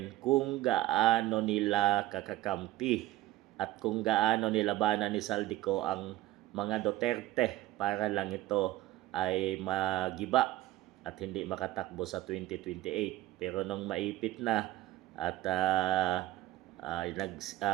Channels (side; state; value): left; quieter; 15.9 dB